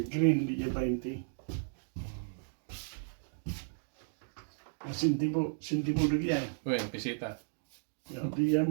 green di 20. Sintimo lagi yan. Wen, bisita. Ja, die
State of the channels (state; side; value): silent; left; digital silence